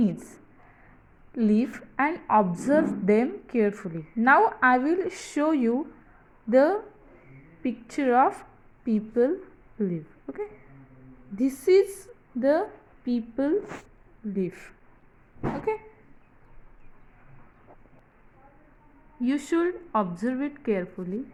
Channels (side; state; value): both; identical; correlation 1.00